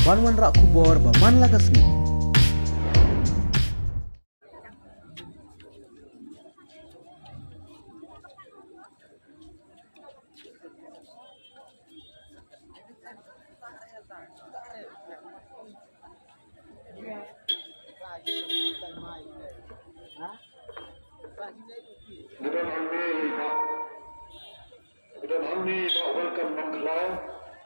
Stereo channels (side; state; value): both; inverted; correlation -1.00